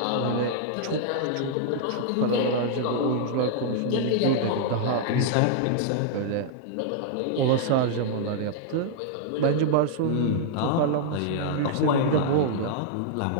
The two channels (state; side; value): different; both; correlation -0.01